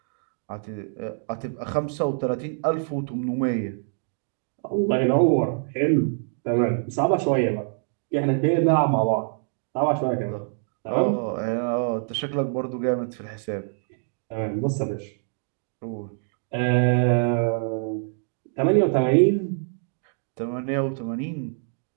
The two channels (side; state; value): left; silent; digital silence